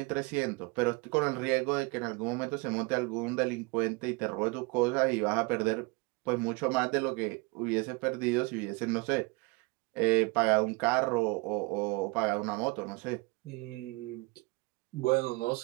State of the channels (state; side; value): quieter; left; 27.0 dB